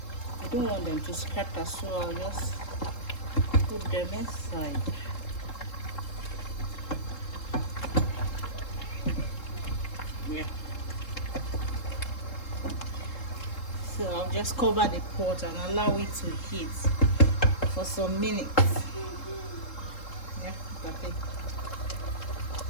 I don't want them to scatter, so I'll just put them inside. Yeah. So I'll just cover the pot and allow it to heat for some minutes. Yeah, look at it.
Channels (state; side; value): late; right; 3.7 ms